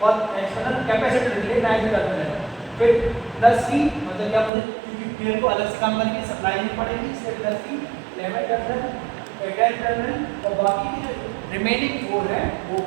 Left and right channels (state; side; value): drops out; left; at 4.5 s